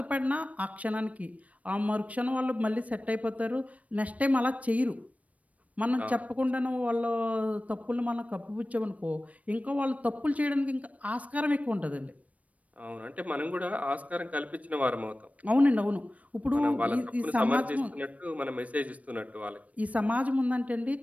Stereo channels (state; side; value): late; left; 0.068 ms